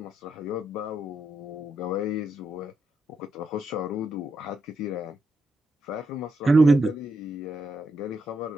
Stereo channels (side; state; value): both; normal; correlation 0.82